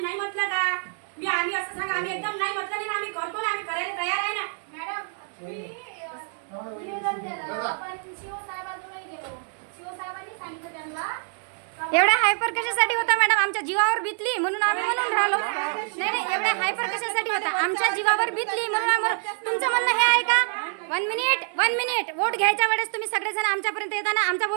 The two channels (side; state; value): left; silent; 60 dB below the other